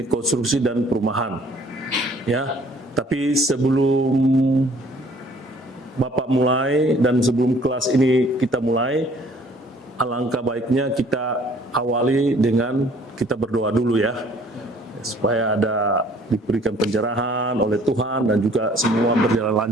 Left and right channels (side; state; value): both; normal; correlation 0.57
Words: konstruksi dan perumahan. Ya, tapi sebelum Bapak mulai dan sebelum kelas ini kita mulai, alangkah baiknya kita awali dengan kita berdoa dulu ya, supaya diberikan pencerahan oleh Tuhan dan juga semua berjalan